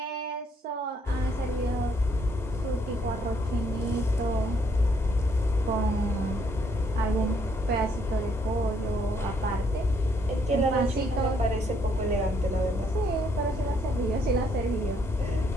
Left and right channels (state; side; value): normal; both; correlation 0.70